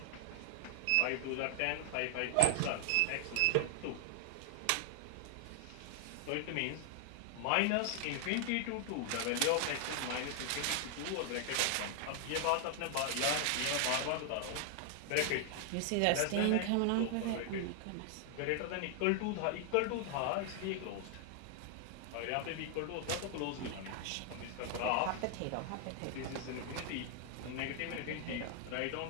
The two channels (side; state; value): both; different; correlation 0.00